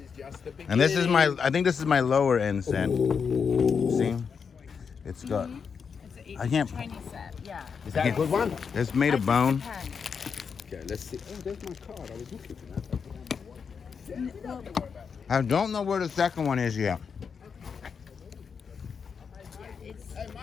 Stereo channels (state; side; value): quieter; right; 6.2 dB